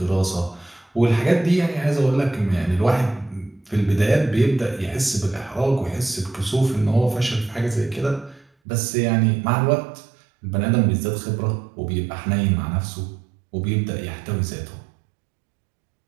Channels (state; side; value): drops out; left; at 8.5 s